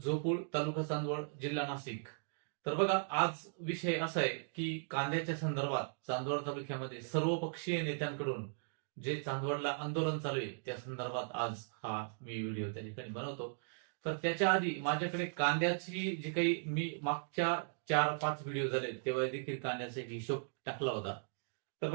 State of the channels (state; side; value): silent; left; digital silence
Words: तालुका चांदवड, जिल्हा नाशिक. तर बघा, आज विषय असा आहे की कांद्याच्या संदर्भात चांदवड तालुक्यामध्ये सर्वपक्षीय नेत्यांकडून जे चांदवडला आंदोलन चालू आहे त्या संदर्भात आज हा मी व्हिडिओ त्या ठिकाणी बनवतो. तर त्याच्या आधी माझ्याकडे कांद्याची जी काही मी मागच्या 4-5 व्हिडिओ झाले तेव्हा देखील कांद्याचा एक हिशोब टाकला होता. तर